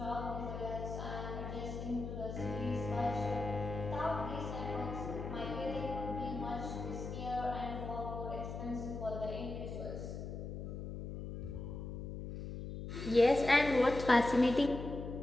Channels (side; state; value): left; noise; hum, 7 dB below the sound